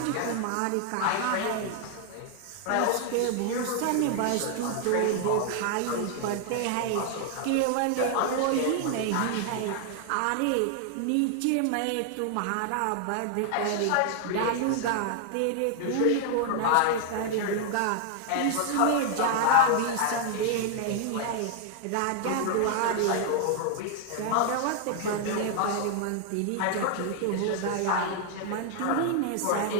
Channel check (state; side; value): different; both; correlation 0.00